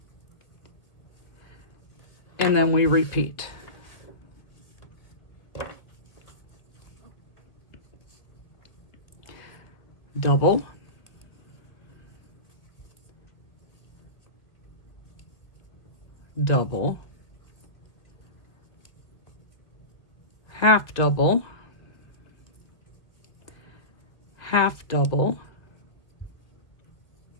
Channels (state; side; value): late; right; 1.6 ms